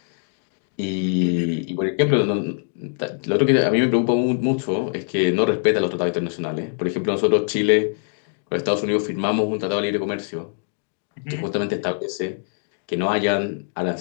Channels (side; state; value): right; silent; digital silence